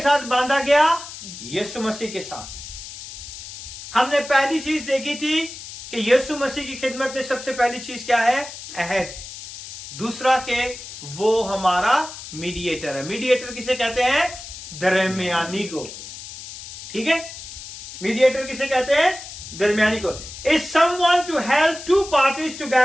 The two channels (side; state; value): left; noise; hiss, 12 dB below the sound